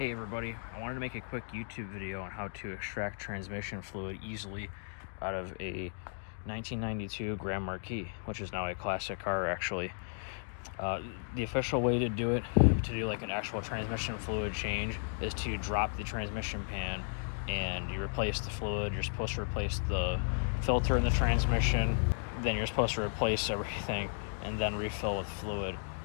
everybody, I wanted to make a quick YouTube video on how to extract transmission fluid easily out of a 1992 Grand Marquis, which is now a classic car actually. The official way to do it, to do like an actual transmission fluid change, is to drop the transmission pan and you replace the fluid. You're supposed to replace the filter in the transmission, then you're supposed to replace everything and then refill with fluid.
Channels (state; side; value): silent; right; digital silence